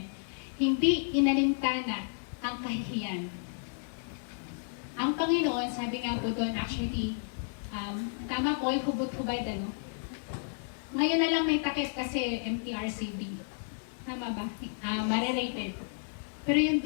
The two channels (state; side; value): silent; right; digital silence